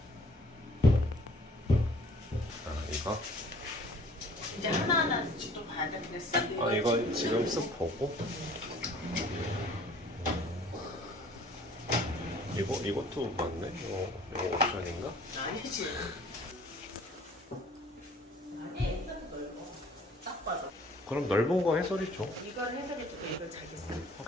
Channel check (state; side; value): normal; both; correlation 0.54